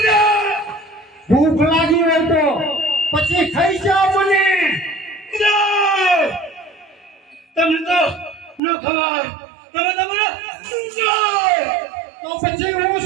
ભૂખ લાગી હોય તો પછી ખાઈ જાઓ મને. ગુરુદેવ તમને તો ન ખબર, તમે તમારે તો પછી હું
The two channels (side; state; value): left; drops out; at 8.6 s